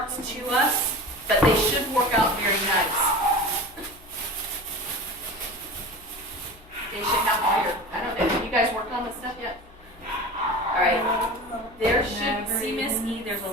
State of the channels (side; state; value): left; noise; hum, 25 dB below the sound